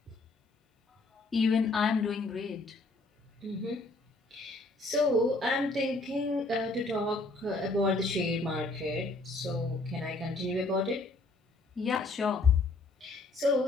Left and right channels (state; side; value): quieter; right; 3.1 dB